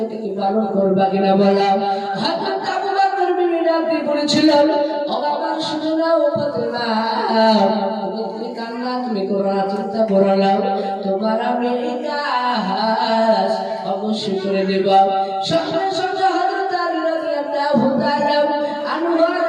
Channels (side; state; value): both; identical; correlation 1.00